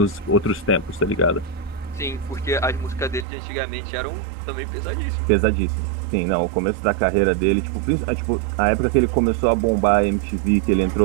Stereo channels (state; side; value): drops out; left; at 3.2 s